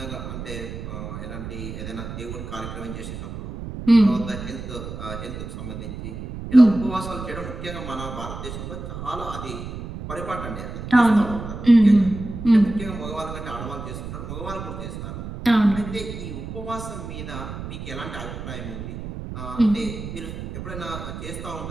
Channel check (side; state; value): right; noise; rumble, 8 dB below the sound